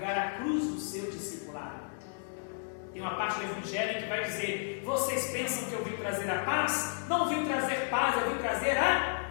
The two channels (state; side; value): silent; right; digital silence